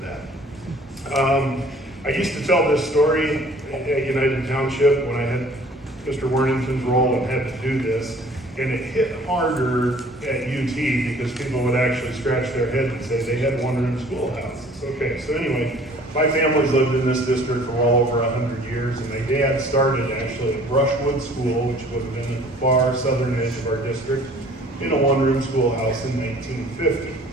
that. I used to tell this story at United Township when I had Mr. Worthington's role and had to do this. And it hit harder at UT because people would actually scratch their head and say they had one-room schoolhouses. Okay, so anyway, my family's lived in this district for well over 100 years, and my dad started actually at Brushwood School, which would have been at the far southern edge of our district, in a one-room schoolhouse in 1950.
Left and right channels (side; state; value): both; normal; correlation 0.52